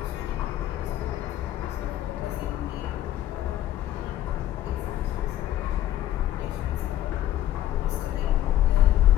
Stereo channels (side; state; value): right; quieter; 12.9 dB